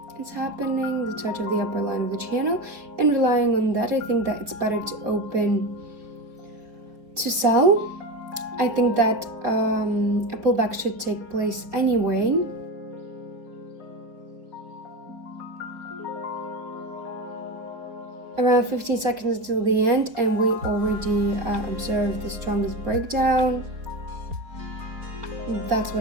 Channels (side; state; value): left; late; 4.0 ms